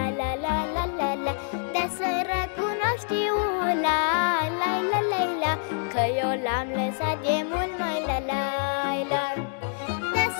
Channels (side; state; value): right; silent; digital silence